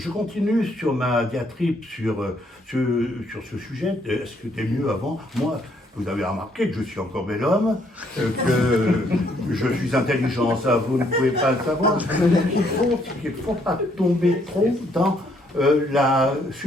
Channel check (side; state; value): both; normal; correlation 0.69